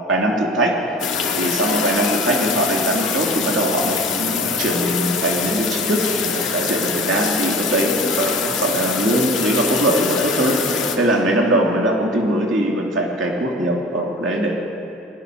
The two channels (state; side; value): normal; both; correlation 0.42